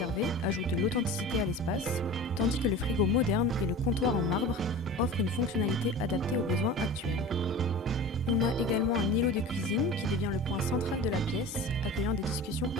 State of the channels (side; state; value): both; normal; correlation 0.36